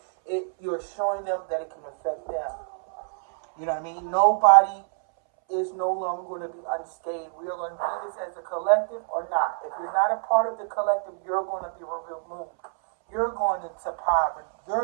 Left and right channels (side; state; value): left; silent; 61 dB below the other